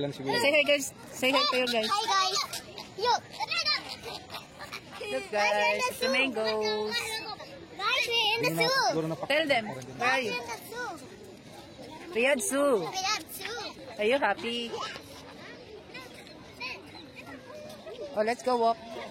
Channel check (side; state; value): both; identical; correlation 1.00